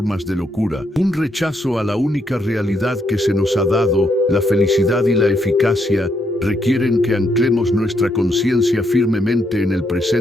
de locura, un rechazo a la única realidad que se nos ha dado. La felicidad y la eficacia requieren que anclemos nuestra conciencia firmemente en el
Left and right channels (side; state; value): both; normal; correlation 0.76